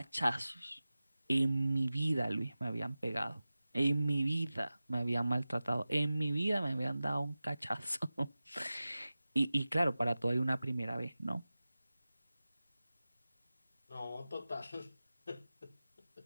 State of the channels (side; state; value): both; inverted; correlation -0.96